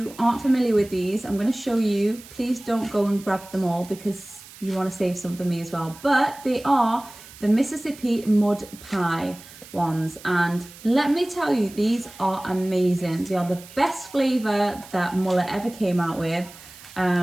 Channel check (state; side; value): noise; right; hiss, 19 dB below the sound